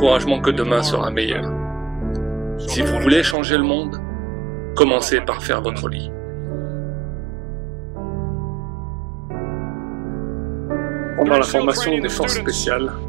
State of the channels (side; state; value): left; drops out; at 3.4 s